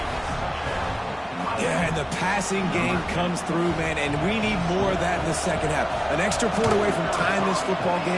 Yeah, and the passing game comes through, man, and we need more of that in the 2nd half. An extra point away from tying this football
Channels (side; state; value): both; identical; correlation 1.00